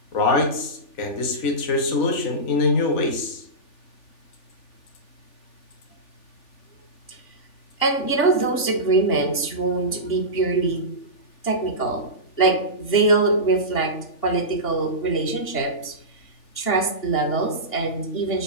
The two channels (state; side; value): late; right; 3.4 ms